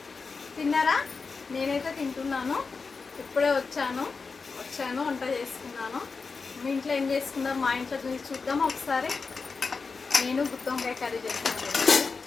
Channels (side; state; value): right; quieter; 4.6 dB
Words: తిన్నారా? నేనైతే తింటున్నాను. ఇప్పుడే వచ్చాను వంట చేసుకున్నాను. మీ ఇంట్లో ఏం చేసుకున్నారు? మా ఇంట్లో చూద్దాం ఒకసారి. నేను గుత్తి వంకాయ కర్రీ చేస్తున్నాను.